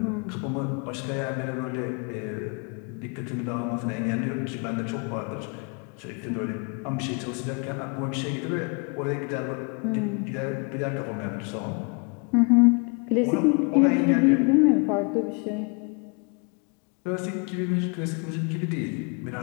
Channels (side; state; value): right; quieter; 34.8 dB